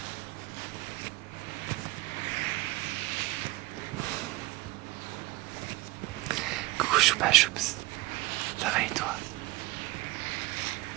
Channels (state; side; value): quieter; left; 19.8 dB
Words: Coucou Choupa Choups, ça va et toi?